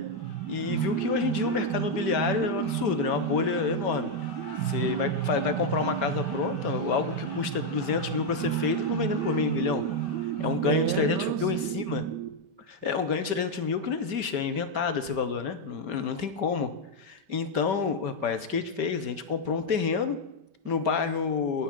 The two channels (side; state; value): left; late; 5.1 ms